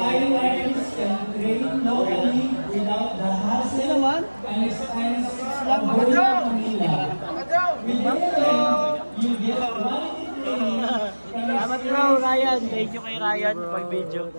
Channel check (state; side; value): inverted; both; correlation -1.00